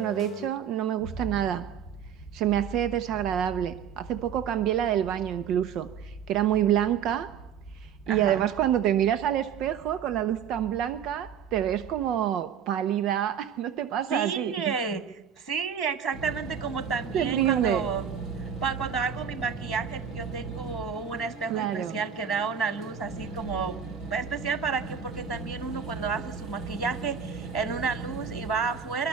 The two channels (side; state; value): left; quieter; 7.9 dB